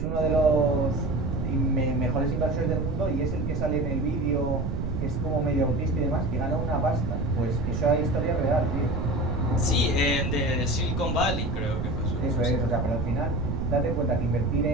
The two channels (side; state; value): right; noise; rumble, 2 dB below the sound